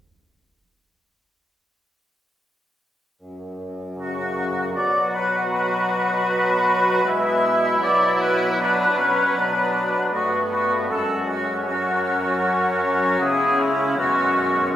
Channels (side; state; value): both; normal; correlation 0.85